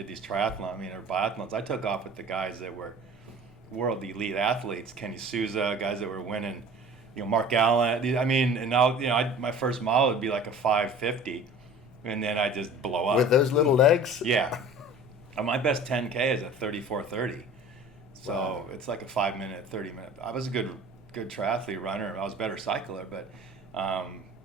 these triathlons, or biathlons, I took off with the guys that were world elite athletes, Kenny Souza, guys that were winning, Mark Allen. I mean, and now my first mile would be like a 5:50. And then I just blow up. With those little legs? Yeah. My best 10K is a 34:30. So Wow. It's like a 5-minute, 30-minute. I was a good triathlete runner. I was a better cycler, but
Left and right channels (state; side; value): noise; right; rumble, 29 dB below the sound